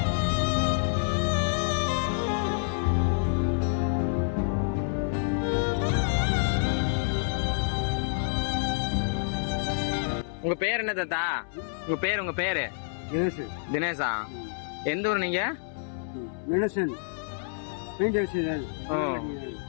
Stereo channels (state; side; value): silent; right; 59 dB below the other